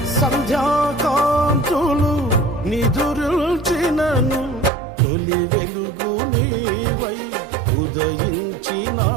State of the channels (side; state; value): left; drops out; at 4.7 s